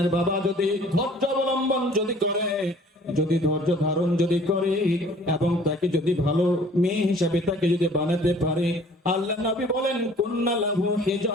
বাবা যদি ধৈর্য অবলম্বন যদি করে, যদি ধৈর্য ধারণ যদি করে এবং তাকে যদি ভালো মেয়ে হিসাবে তাকে যদি বানাতে পারে, আল্লাহ নবী বলেন, কুন্না লাহু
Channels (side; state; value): both; normal; correlation 0.53